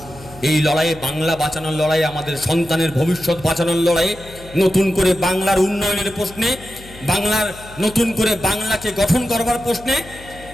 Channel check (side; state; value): left; noise; hum, 19 dB below the sound